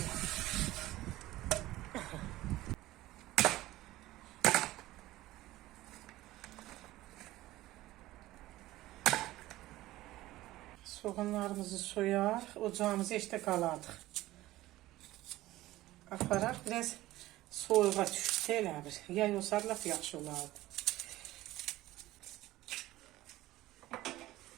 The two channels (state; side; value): quieter; left; 16.6 dB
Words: Soğanlarımızı soyar, ocağımızı işte qaladıq. Aparaq, biraz soyuğa düşsə elə bir. Yay olsa laf yaxşı olardı.